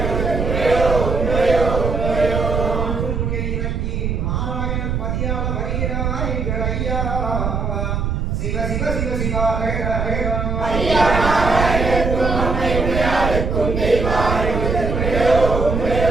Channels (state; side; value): noise; right; rumble, 1 dB below the sound